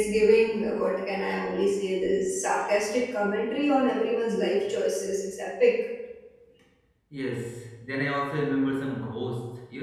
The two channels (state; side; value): identical; both; correlation 1.00